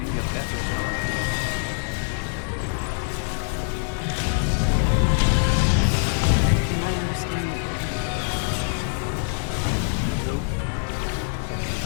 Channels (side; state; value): right; silent; 61 dB below the other